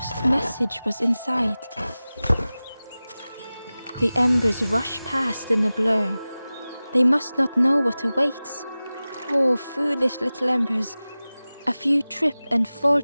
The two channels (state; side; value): inverted; both; correlation -0.97